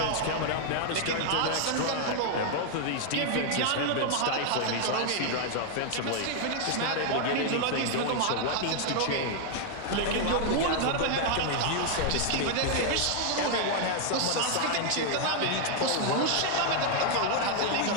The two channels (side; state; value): both; different; correlation 0.00